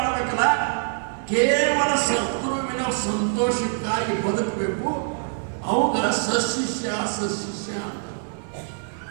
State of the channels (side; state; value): left; silent; 62 dB below the other